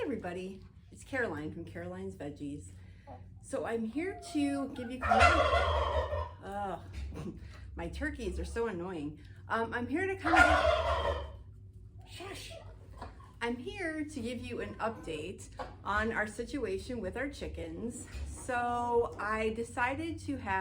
everybody, it's Caroline from Caroline's Veggies. So I'm here to give you kind of, my turkeys are so annoying. I'm here to kind of I'm here to give you an update on our situation with our chickens. So I decided to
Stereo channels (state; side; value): identical; both; correlation 1.00